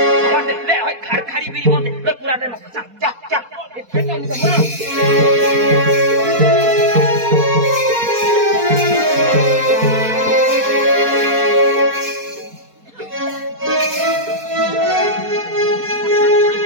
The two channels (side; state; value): left; late; 4.2 ms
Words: खारी बिरी म्हणते पुरा